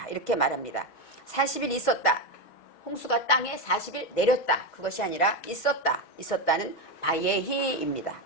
이렇게 말합니다. 40일 있었다. 홍수가 땅에 40일 내렸다. 그것이 아니라 있었다. 있었다는 바예히입니다.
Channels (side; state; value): right; late; 6.2 ms